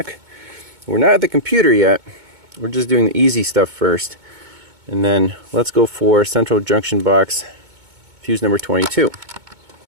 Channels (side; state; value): left; late; 2.2 ms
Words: We're not at the computer yet. We're just doing the easy stuff first. And then let's go for central junction box, fuse number 22.